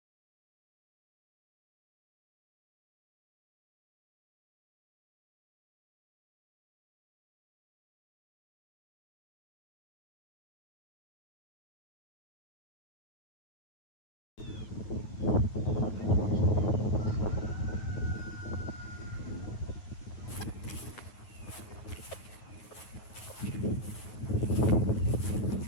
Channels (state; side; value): late; right; 9.0 ms